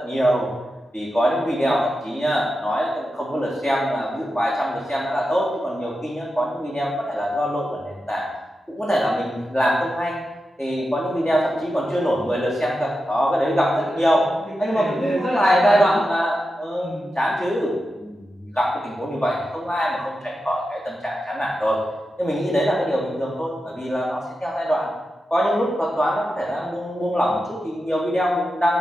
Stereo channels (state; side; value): normal; both; correlation 0.90